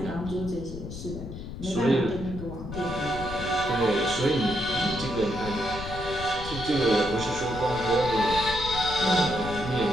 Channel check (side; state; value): left; noise; rumble, 9 dB below the sound